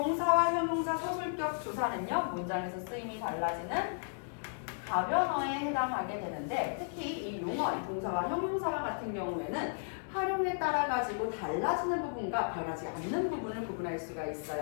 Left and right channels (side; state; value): right; silent; digital silence